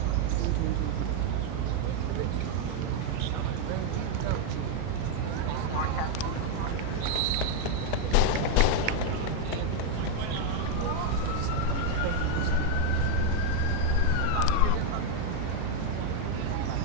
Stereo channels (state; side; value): different; both; correlation 0.00